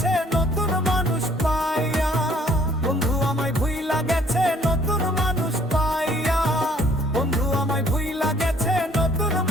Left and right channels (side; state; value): both; normal; correlation 0.61